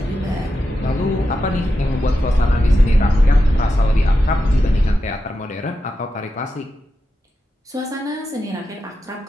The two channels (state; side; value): normal; both; correlation 0.89